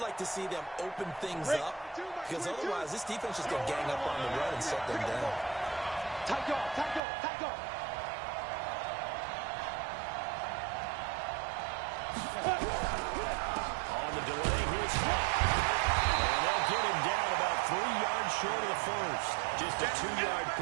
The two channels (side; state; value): left; drops out; at 7.0 s